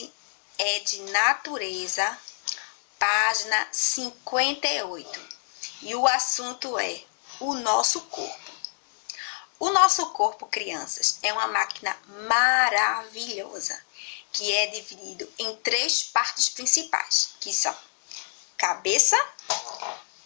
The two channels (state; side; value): silent; right; 60 dB below the other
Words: é de natureza, página 58. E o assunto é o nosso corpo. O nosso corpo, crianças, é uma máquina maravilhosa, que é dividido em 3 partes principais, que são cabeça,